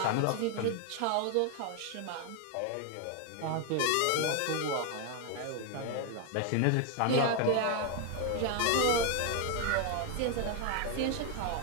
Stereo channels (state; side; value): different; both; correlation 0.01